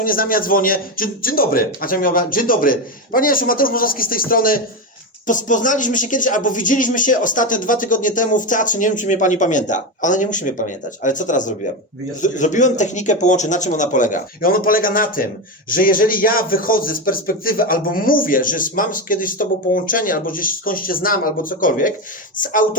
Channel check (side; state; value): both; normal; correlation 0.14